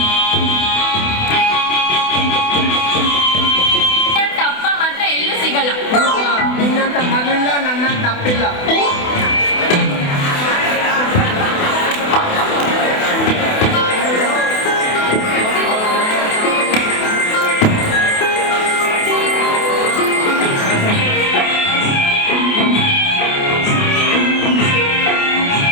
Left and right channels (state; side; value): late; right; 28 ms